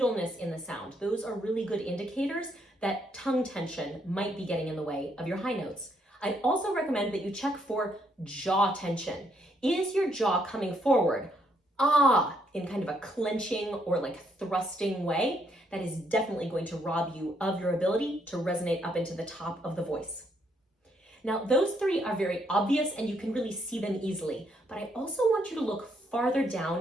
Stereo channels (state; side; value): normal; both; correlation 0.73